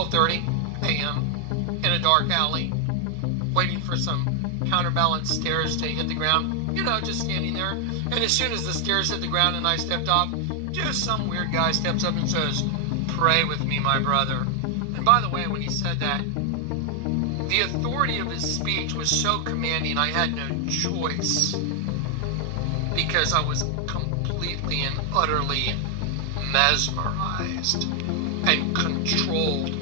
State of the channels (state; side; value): different; both; correlation 0.00